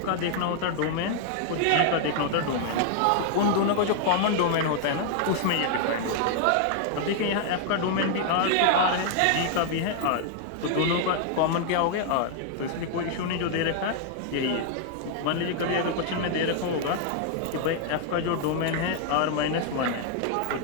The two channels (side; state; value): both; different; correlation 0.00